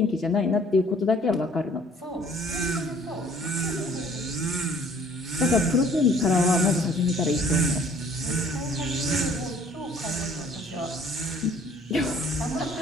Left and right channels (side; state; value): both; normal; correlation 0.57